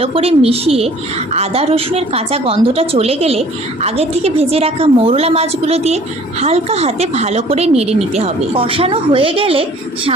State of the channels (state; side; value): normal; both; correlation 0.52